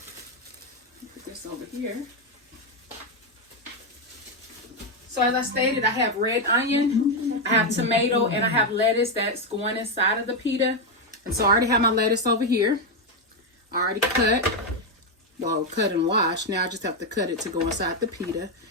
Put this over here. So as I stated, I have red onion, I have tomato, and I have lettuce that's going inside of the pita. And so I already have my lettuce over here. I already cut and washed. Now I just have to cut it to go inside the pita.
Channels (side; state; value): both; normal; correlation 0.05